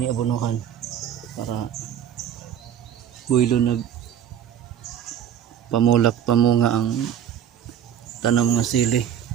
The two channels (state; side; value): quieter; left; 9.5 dB